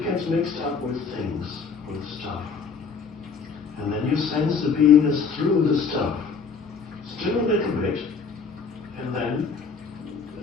gets mixed up with things, with stuff. And then you sense the beingness through the stuff. Still a little bit, And then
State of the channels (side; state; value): right; quieter; 5.5 dB